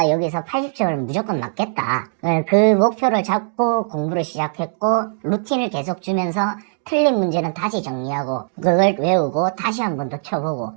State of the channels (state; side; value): silent; left; digital silence